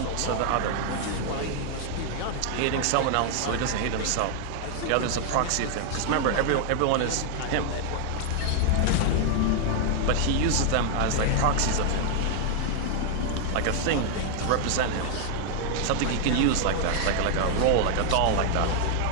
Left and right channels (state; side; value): different; both; correlation 0.00